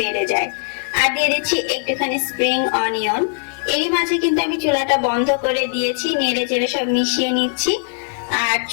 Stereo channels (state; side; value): silent; right; digital silence